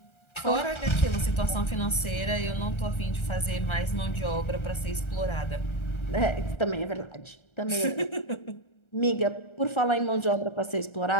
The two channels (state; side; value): late; right; 1.3 ms